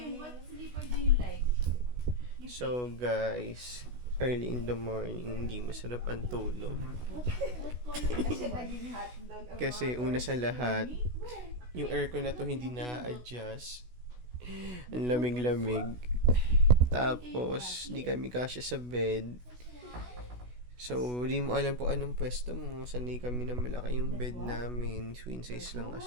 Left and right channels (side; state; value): left; late; 16 ms